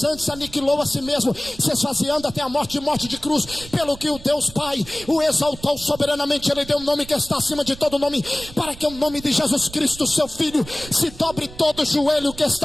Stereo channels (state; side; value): noise; right; rumble, 17 dB below the sound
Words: antes aniquilou a si mesmo, se esvaziando até a morte de cruz, pelo que o Deus Pai o exaltou soberanamente. Ele deu um nome que está acima de todo nome, para que o nome de Jesus Cristo, seu Filho, se dobre todo joelho que